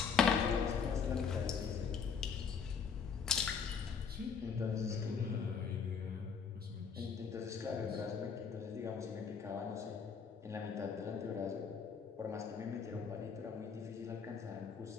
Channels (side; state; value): right; quieter; 6.2 dB